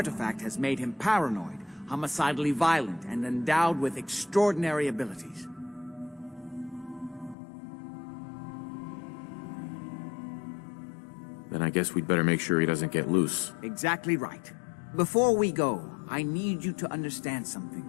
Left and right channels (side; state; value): right; drops out; at 7.4 s